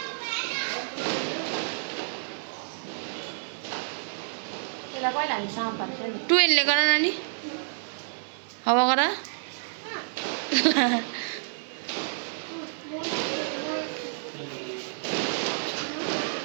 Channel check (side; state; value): left; silent; digital silence